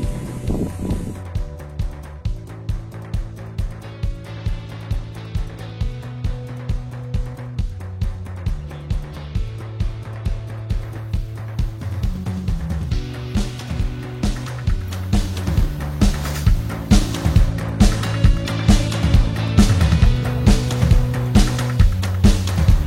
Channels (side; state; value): both; identical; correlation 1.00